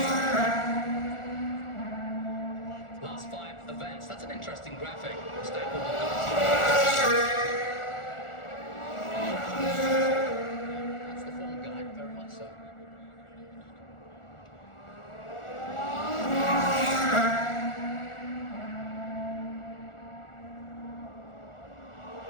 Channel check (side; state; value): right; late; 1.4 ms